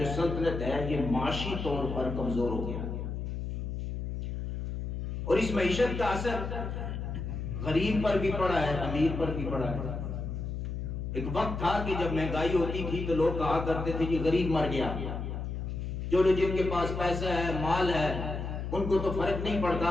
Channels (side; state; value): left; noise; hum, 4 dB below the sound